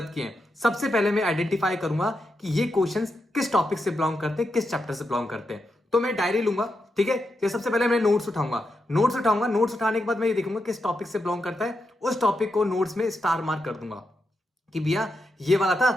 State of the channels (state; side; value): normal; both; correlation 0.85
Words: किए हैं सबसे पहले मैं आइडेंटिफाई करूंगा कि ये क्वेश्चंस किस टॉपिक से बिलोंग करते हैं, किस चैप्टर से बिलोंग करते हैं। तो मैं डायरी लूंगा। ठीक है, तो सबसे पहले मैं नोट्स उठाऊंगा। नोट्स उठाने के बाद मैं ये देखूंगा किस टॉपिक से बिलोंग करता है, उस टॉपिक को नोट्स में स्टार मार्क कर दूंगा कि भैया ये वाला